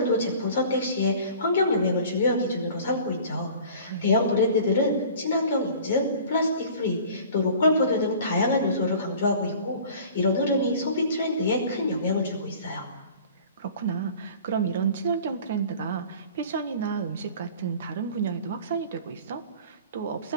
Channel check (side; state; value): both; inverted; correlation -0.45